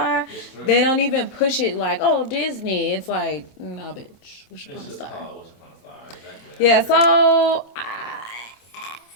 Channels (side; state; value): right; late; 26 ms